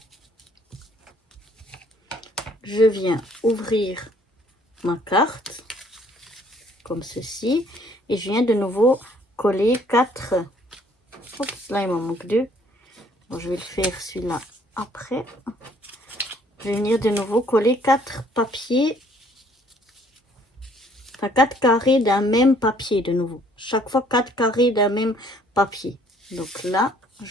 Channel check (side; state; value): both; normal; correlation 0.61